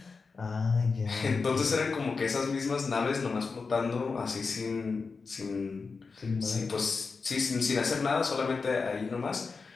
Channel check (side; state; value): right; quieter; 4.6 dB